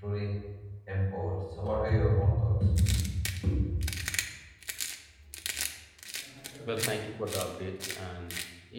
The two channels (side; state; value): both; identical; correlation 1.00